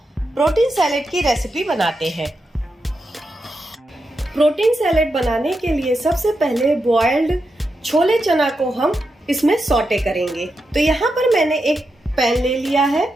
प्रोटीन सैलेड की रेसिपी बनाते हैं। प्रोटीन सैलेड बनाने के लिए सबसे पहले बॉइल्ड छोले चना को हम इसमें सौटे करेंगे। तो यहाँ पर मैंने एक पैन ले लिया है,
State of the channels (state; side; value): normal; both; correlation 0.87